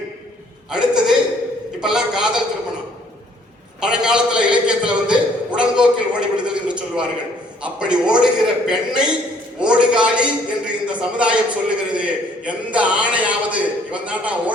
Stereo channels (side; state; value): both; normal; correlation 0.62